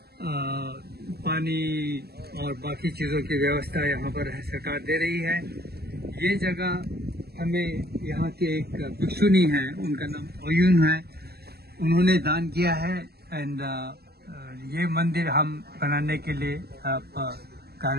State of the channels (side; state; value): left; late; 0.46 ms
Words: पानी और बाकी चीजों की व्यवस्था यहाँ पर सरकार दे रही है. ये जगह हमें यहाँ के एक भिक्षुनी है, उनका नाम ओयुन है, उन्होंने दान किया है एंड ये मंदिर हम बनाने के लिए